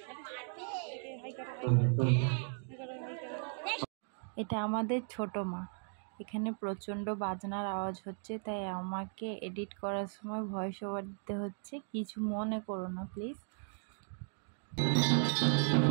এটা আমাদের ছোট মা। এখানে প্রচণ্ড বাজনার আওয়াজ হচ্ছে, তাই আমাকে এডিট করার সময় ভয়েস ওভার দিতে হচ্ছে, কিছু মনে করো না প্লিজ।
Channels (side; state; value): left; silent; 53 dB below the other